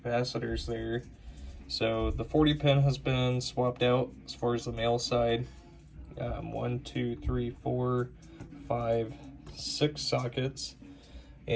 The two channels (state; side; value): identical; both; correlation 1.00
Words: there. So the 40 pin has been swapped out as far as the male side. 1, 2, 3, 4, 5, 6 sockets.